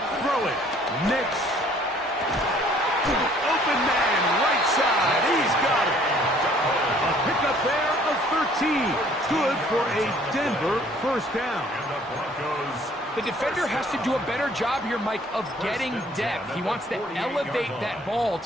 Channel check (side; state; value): both; normal; correlation 0.58